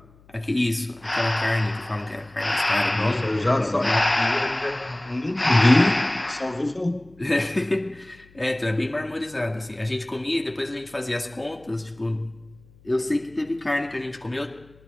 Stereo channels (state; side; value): noise; left; hum, 27 dB below the sound